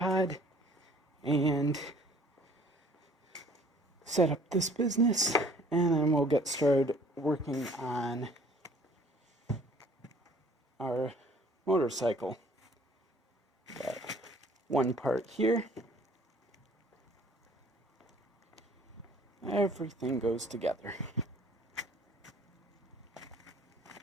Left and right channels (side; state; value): both; normal; correlation 0.55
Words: and set up this business, and then we'll get started working on our motorcycle. Got one part here. Everything goes together.